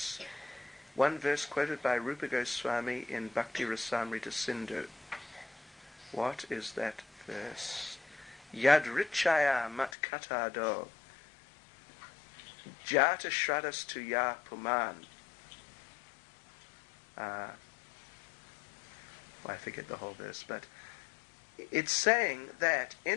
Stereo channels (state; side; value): drops out; right; at 9.9 s